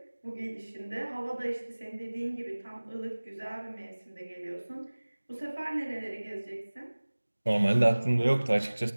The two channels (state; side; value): inverted; both; correlation -1.00